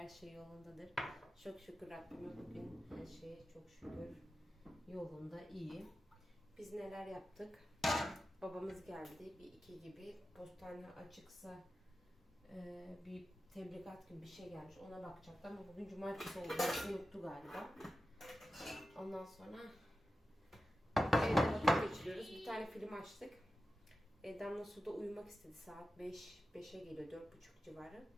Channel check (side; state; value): both; normal; correlation 0.93